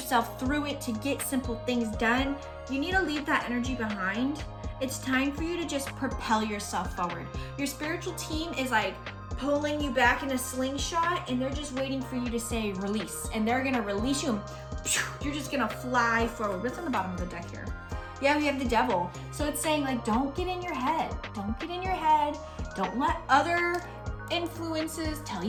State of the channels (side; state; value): both; identical; correlation 1.00